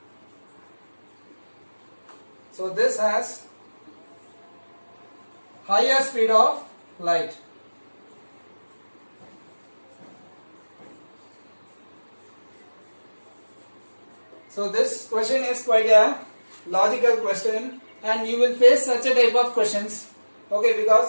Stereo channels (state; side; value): inverted; both; correlation -1.00